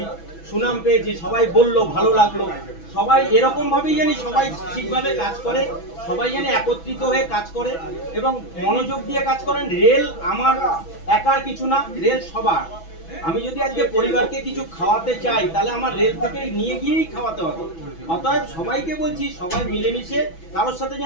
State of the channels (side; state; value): right; late; 6.1 ms